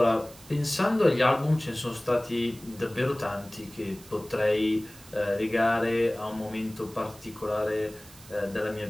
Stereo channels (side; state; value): right; noise; hiss, 21 dB below the sound